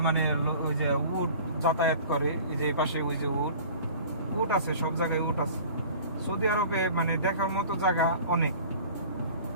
মানে ওই যে উট যাতায়াত করে। এই যে পাশে ওই যে উট, উট আছে, সব জায়গায় উট আছে। সৌদি আরবে মানে দেখার মতো জায়গা অনেক।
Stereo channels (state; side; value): inverted; both; correlation -0.44